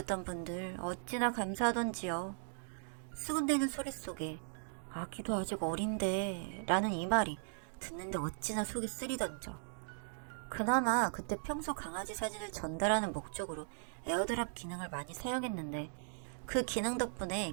분들 어찌나 감사하던지요. 수군대는 소리 속에 아기도 아직 어린데 라는 이 말이 듣는데 어찌나 속이 쓰리던져. 그나마 그때 평소 강아지 사진을 전달하는 목적으로 에어드랍 기능을 많이 사용했는데 그 기능 덕분에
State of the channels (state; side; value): silent; left; digital silence